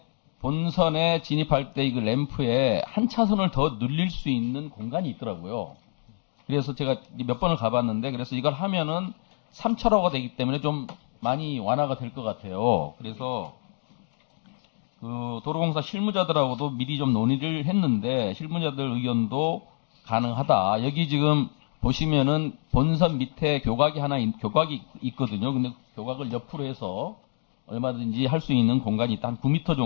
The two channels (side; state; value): right; silent; 60 dB below the other